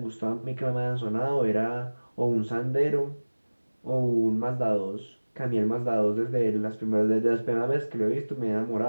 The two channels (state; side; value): inverted; both; correlation -1.00